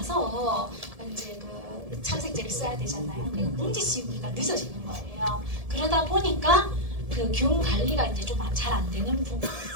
이제 그 착색제를 써야 되잖아요. 그러니까 봉지 씌우기가 늦어지는 거예요. 그러다 보니까 그 균 관리가 이제 좀 잘 안 되는 부분이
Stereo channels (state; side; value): late; left; 1.7 ms